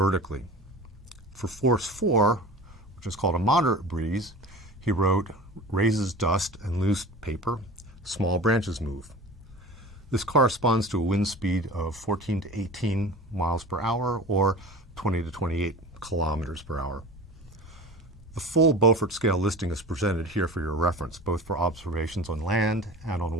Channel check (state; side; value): normal; both; correlation 0.37